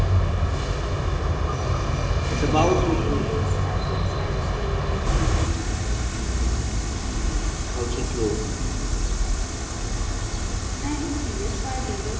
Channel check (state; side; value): identical; both; correlation 1.00